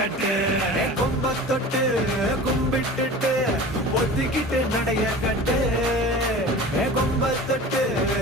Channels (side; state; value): both; normal; correlation 0.37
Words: கொம்ப தொட்டு கும்பிட்டுட்டு ஒத்திக்கிட்டு நடைய கட்டு கொம்ப தொட்டு